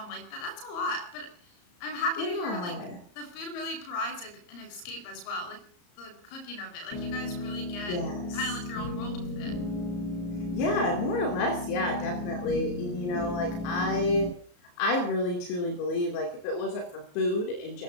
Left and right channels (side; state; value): right; late; 34 ms